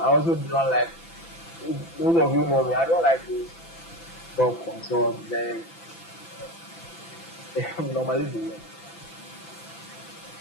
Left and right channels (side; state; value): right; late; 6.0 ms